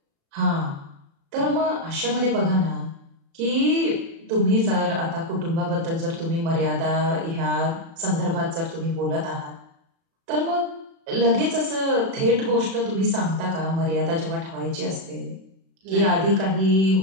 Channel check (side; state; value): left; late; 36 ms